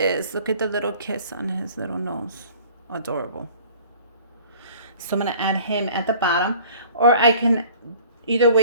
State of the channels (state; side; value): inverted; both; correlation -0.49